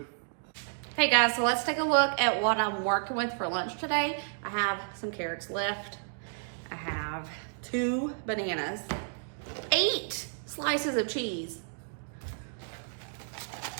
Hey guys, so let's take a look at what I'm working with for lunch today. I have some carrots left. I have 2 bananas, 8 slices of cheese,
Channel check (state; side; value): silent; left; digital silence